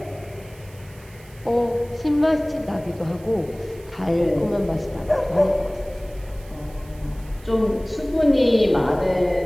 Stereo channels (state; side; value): noise; right; hiss, 25 dB below the sound